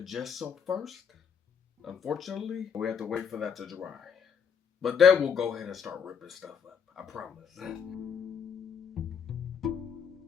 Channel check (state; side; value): quieter; right; 7.0 dB